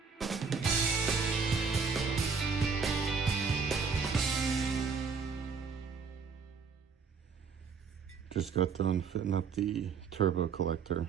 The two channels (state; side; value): quieter; left; 5.4 dB